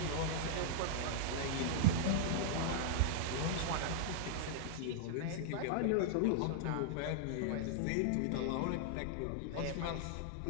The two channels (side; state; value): both; different; correlation -0.01